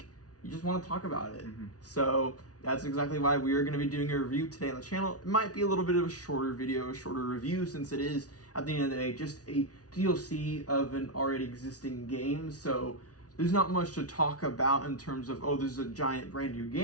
you just want to talk about it. So that's exactly why we are going to be doing a review today on the channel. It might be a little bit of a shorter video, a shorter review, since it is, at the end of the day, just a DLC of an already existing game, so there's not much to talk about in terms of, oh, this is a giant brand new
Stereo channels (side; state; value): right; late; 0.68 ms